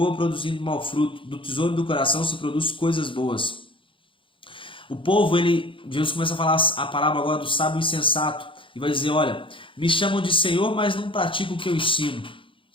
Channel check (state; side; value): late; right; 0.25 ms